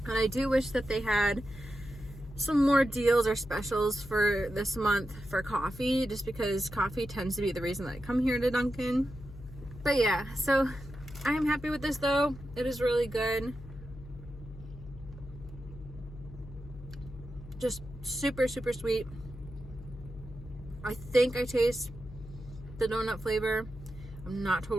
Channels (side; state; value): left; noise; hum, 15 dB below the sound